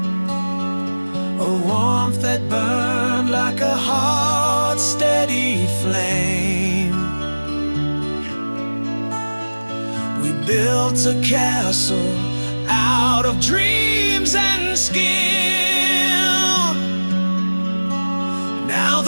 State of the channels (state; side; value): inverted; both; correlation -1.00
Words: a warmth that burned like a hot, steady flame. We built a castle out of dreams and skill. Now